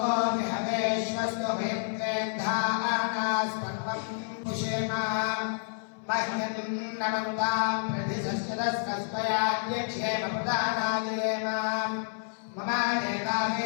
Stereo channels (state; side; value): silent; right; 58 dB below the other